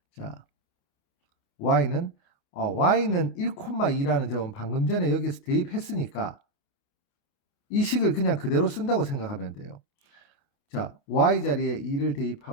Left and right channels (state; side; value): late; right; 28 ms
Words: 자, y는 y는 1,2라는 점은 방금 전에 여기서 대입했으니까 이 식을 그냥 그대로 쓴다고 생각하면 돼요. 자, y 자리에 2를